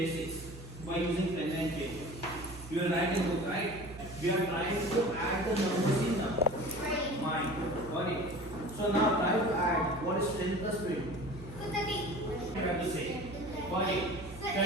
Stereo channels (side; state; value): right; noise; hum, 14 dB below the sound